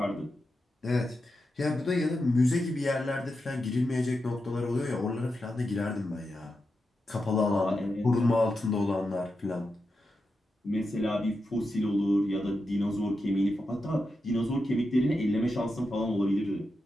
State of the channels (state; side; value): normal; both; correlation 0.88